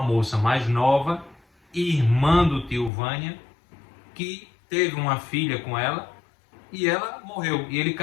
moça mais nova, irmã do tio Vânia, que teve uma filha com ela, e ela morreu. E ele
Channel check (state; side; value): drops out; right; at 2.9 s